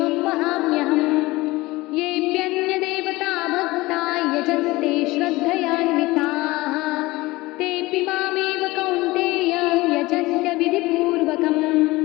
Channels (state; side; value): quieter; right; 20.4 dB